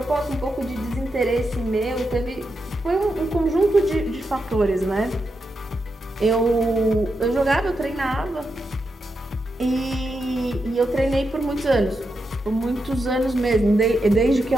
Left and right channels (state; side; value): normal; both; correlation 0.86